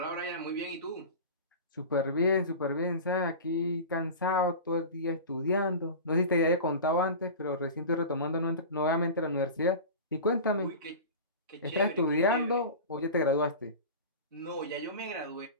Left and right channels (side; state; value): both; inverted; correlation -0.32